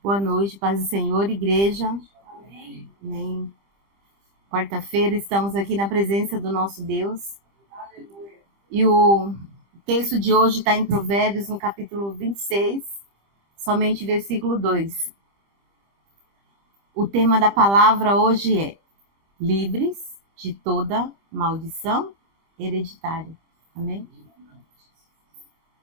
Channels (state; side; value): late; left; 25 ms